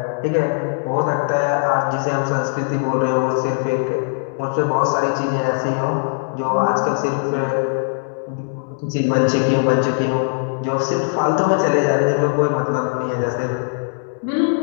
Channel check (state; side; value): silent; right; digital silence